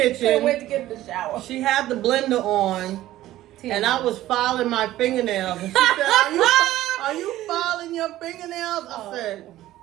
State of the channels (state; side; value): quieter; left; 14.8 dB